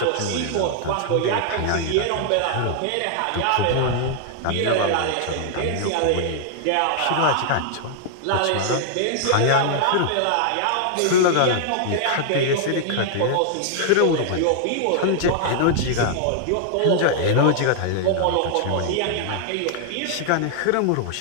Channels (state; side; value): different; both; correlation -0.01